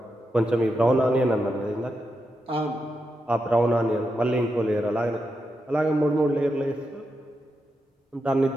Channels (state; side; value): normal; both; correlation 0.86